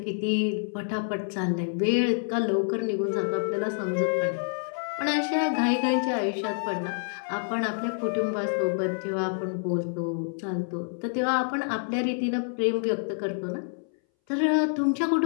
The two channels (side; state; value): right; silent; 60 dB below the other